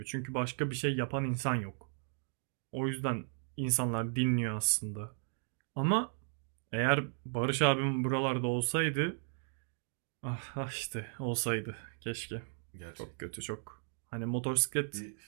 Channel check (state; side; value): silent; left; 54 dB below the other